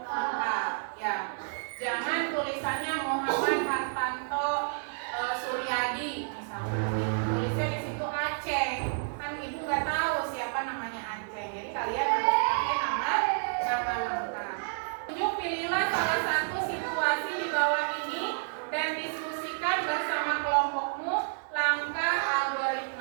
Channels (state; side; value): silent; left; digital silence